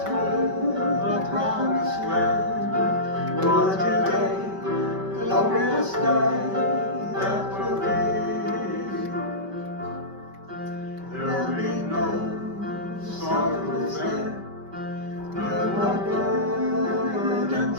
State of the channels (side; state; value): left; late; 5.2 ms